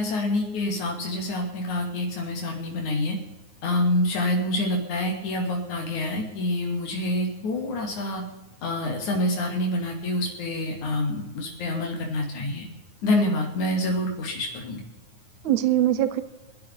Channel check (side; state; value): right; late; 9.5 ms